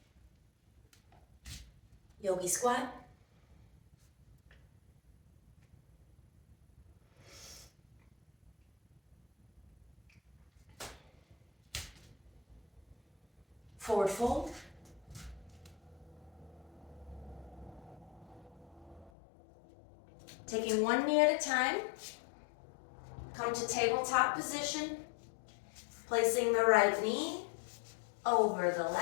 Yogi squat. Forward fold. Taking one knee at a time. Come to tabletop position. Placing the right knee over the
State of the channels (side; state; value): right; drops out; at 19.1 s